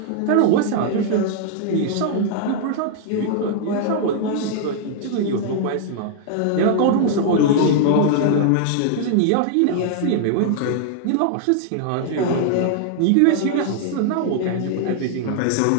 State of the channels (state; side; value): different; both; correlation -0.01